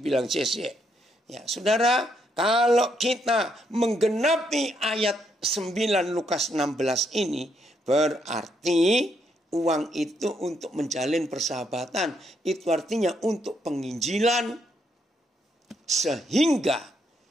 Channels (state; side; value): normal; both; correlation 0.75